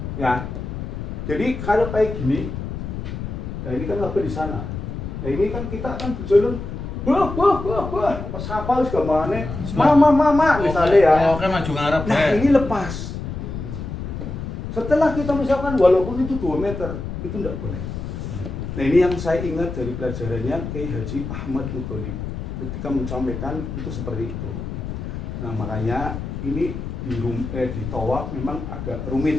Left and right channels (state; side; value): noise; left; rumble, 6 dB below the sound